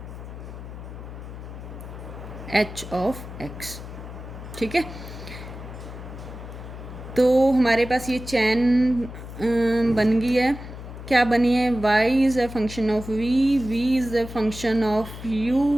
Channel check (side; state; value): left; noise; hum, 12 dB below the sound